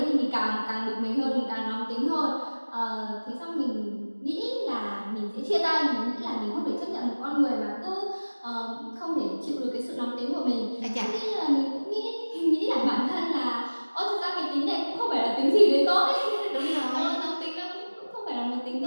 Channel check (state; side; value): inverted; both; correlation -1.00